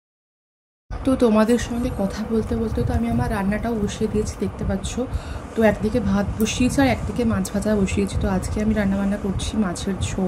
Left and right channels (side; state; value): both; identical; correlation 1.00